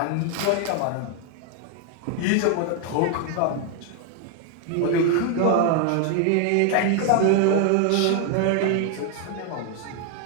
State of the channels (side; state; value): both; different; correlation 0.00